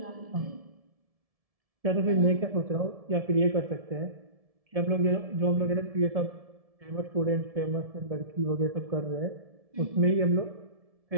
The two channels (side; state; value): left; late; 1.7 ms